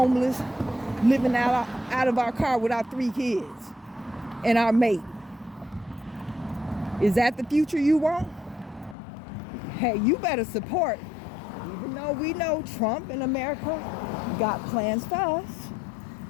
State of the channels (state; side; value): drops out; right; at 9.0 s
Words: living out of our car with our 3 kids and our mate. Is that the future you want? Hey, you better support. Even though we know Trump and America got plans for us,